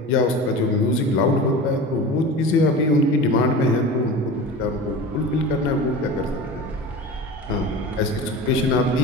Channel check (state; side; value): normal; both; correlation 0.32